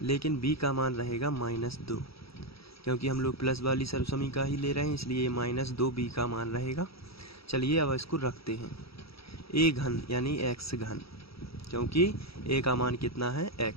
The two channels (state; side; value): late; right; 0.76 ms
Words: लेकिन b का मान रहेगा -2, क्योंकि हम लोग प्लस वाली सर्वसमीका ही ले रहे हैं, इसलिए -2b का मान रहेगा। चलिए अब इसको रखते हैं। a घन यानी x घन, क्योंकि a का मान कितना है